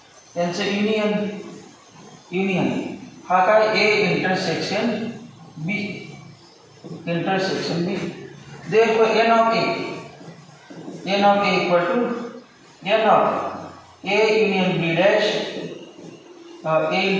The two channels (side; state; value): both; identical; correlation 1.00